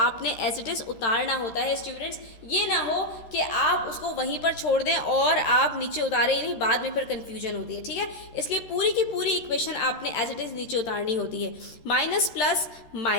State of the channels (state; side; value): late; right; 13 ms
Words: आपने एज इट इज़ उतारना होता है स्टूडेंट्स। ये ना हो कि आप उसको वहीं पर छोड़ दें और आप नीचे उतारे ही नहीं, बाद में फिर कन्फ्यूजन कन्फ्यूजन होती है, ठीक है। इसलिए पूरी की पूरी इक्वेशन आपने एज इट इज़ नीचे उतारनी होती है। Minus plus